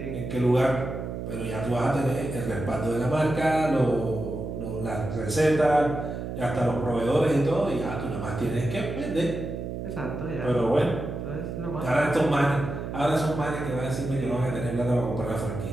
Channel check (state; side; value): noise; right; hum, 6 dB below the sound